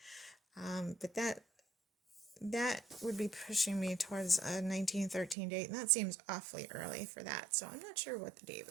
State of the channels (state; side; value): drops out; left; at 5.4 s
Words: but that would be pushing me towards a 1913 date, and that seems awfully early for that, so I'm not sure what the date